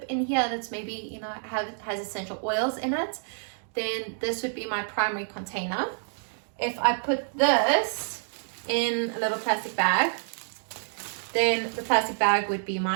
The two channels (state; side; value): silent; left; digital silence